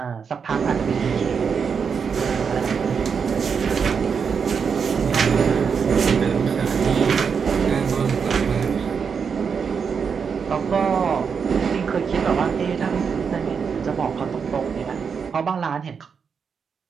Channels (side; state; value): left; quieter; 6.2 dB